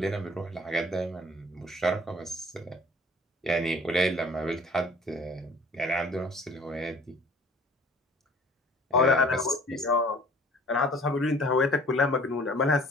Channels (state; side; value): normal; both; correlation 0.51